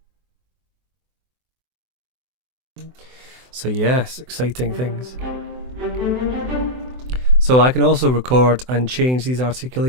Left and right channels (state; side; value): late; left; 24 ms